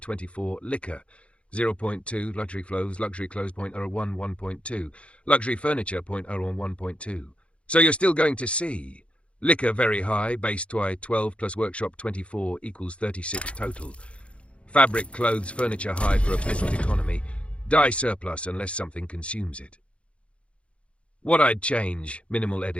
24, liquor 0.2, luxury clothes 0.01, 1.2, luxury furniture 0.01, 1.2. So you're still going to see liquor very high, base TWI 12 plus workshop 24 equals 36 total. Fabric, clothes, furniture high for a peasant economy. Dye surplus unless something consumes it. What I'd change, minimal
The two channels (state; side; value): late; right; 0.060 ms